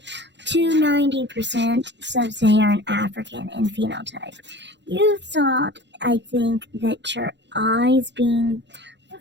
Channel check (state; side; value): late; left; 0.52 ms